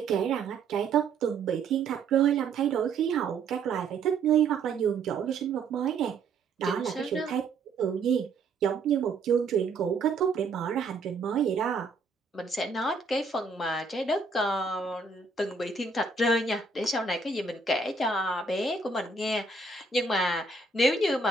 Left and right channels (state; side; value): quieter; left; 4.1 dB